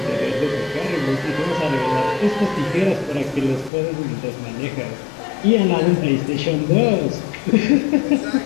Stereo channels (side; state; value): right; drops out; at 3.7 s